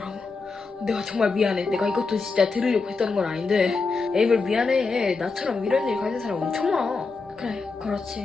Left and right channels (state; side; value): quieter; right; 4.3 dB